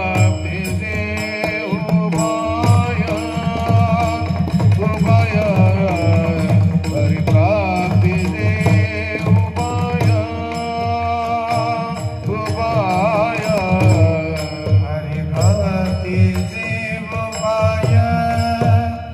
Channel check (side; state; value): both; identical; correlation 1.00